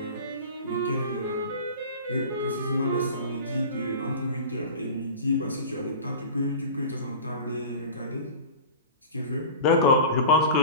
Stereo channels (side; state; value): both; inverted; correlation -0.35